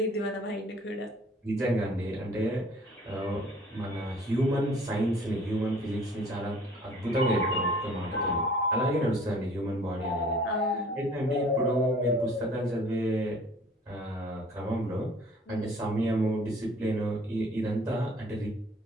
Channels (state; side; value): normal; both; correlation 0.53